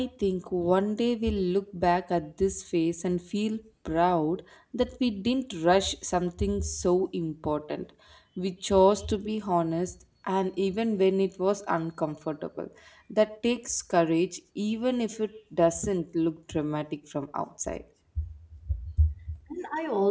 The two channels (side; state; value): both; identical; correlation 1.00